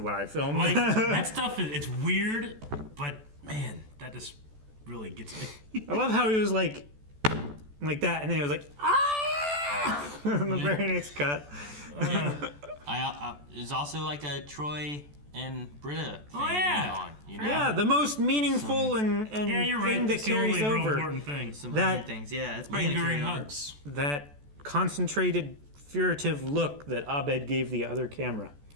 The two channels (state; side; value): late; left; 14 ms